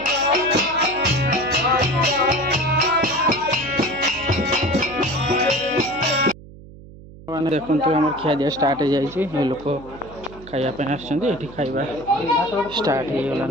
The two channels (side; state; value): right; noise; hum, 18 dB below the sound